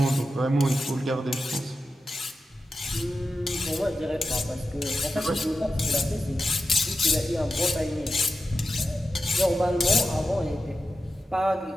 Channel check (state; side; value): normal; both; correlation 0.91